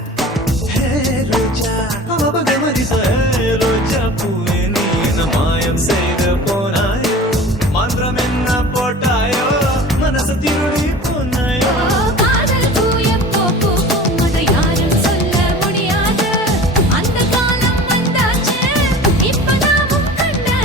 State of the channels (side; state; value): both; normal; correlation 0.39